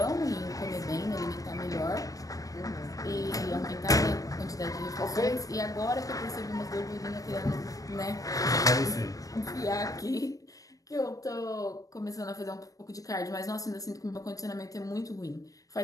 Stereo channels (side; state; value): right; late; 0.17 ms